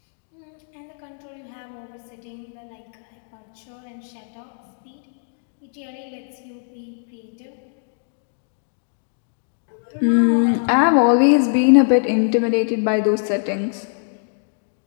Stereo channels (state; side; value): silent; right; digital silence